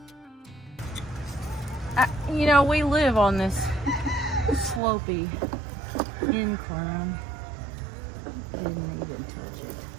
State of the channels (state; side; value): drops out; left; at 4.8 s